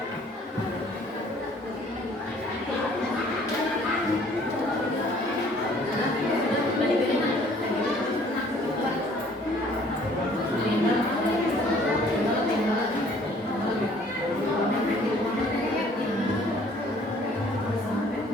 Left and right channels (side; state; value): both; normal; correlation 0.57